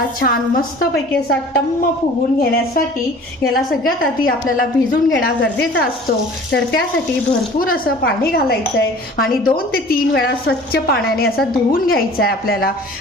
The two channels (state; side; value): normal; both; correlation 0.46